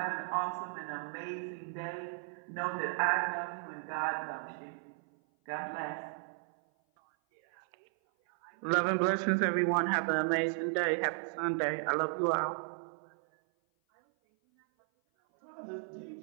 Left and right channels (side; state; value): left; silent; 55 dB below the other